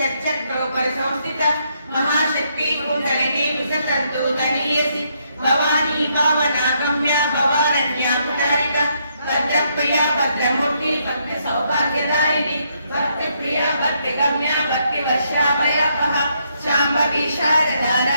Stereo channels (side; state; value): both; inverted; correlation -0.75